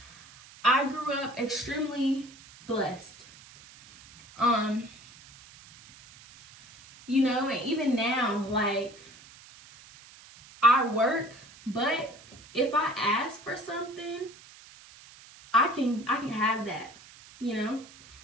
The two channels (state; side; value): noise; right; hiss, 21 dB below the sound